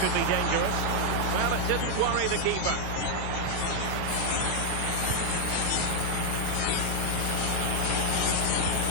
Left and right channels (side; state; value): both; different; correlation 0.01